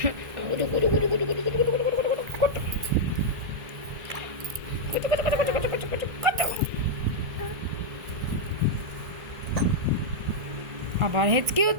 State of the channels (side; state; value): left; late; 1.5 ms